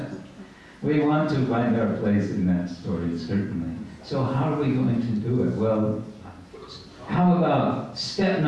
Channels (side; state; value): both; identical; correlation 1.00